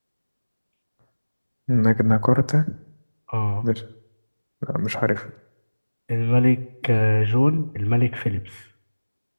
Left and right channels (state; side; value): inverted; both; correlation -1.00